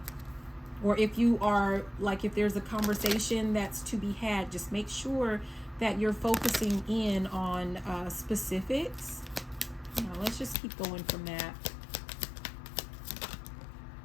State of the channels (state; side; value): drops out; right; at 10.6 s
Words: Or if you are like, if there's a conversation that's to be had, just make sure that you're focusing in on specifics. Now, let's just keep going from that.